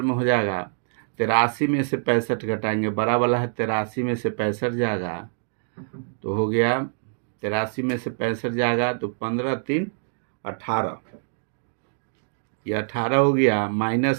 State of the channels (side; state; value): left; silent; digital silence